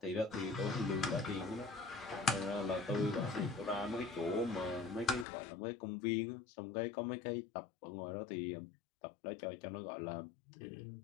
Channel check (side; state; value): right; drops out; at 5.2 s